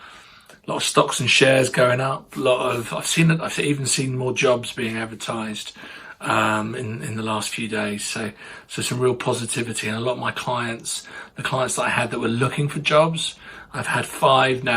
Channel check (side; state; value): both; identical; correlation 1.00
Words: A lot of stocks and shares going up. I've even seen more jobs being advertised in the last few days. So some real positivity, and a lot of my clients, the clients that I had that were looking for jobs, I've had 5